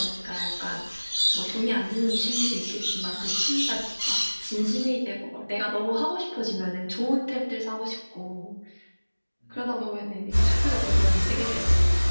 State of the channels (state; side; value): inverted; both; correlation -1.00